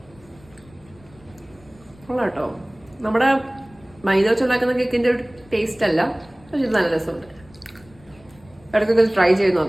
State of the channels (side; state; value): left; noise; rumble, 26 dB below the sound